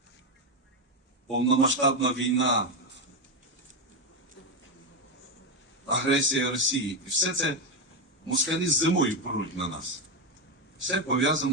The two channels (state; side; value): normal; both; correlation 0.09